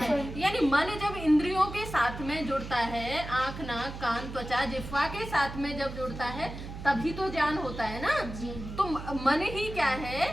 यानी मन जब इंद्रियों के साथ में जुड़ता है, आंख नाक कान त्वचा जिह्वा के साथ में जब जुड़ता है तभी तो ज्ञान होता है ना। तो मन ही क्या है?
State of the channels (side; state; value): right; noise; hum, 10 dB below the sound